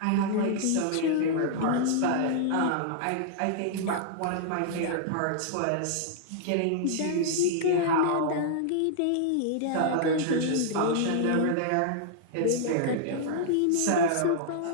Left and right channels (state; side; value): different; both; correlation -0.01